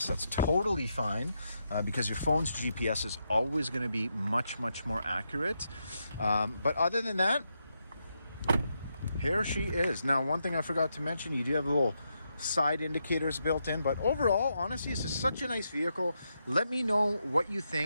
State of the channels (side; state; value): both; inverted; correlation -0.82